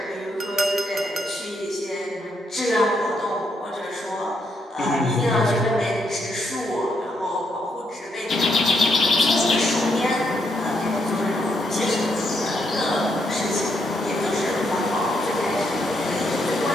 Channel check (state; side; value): normal; both; correlation 0.77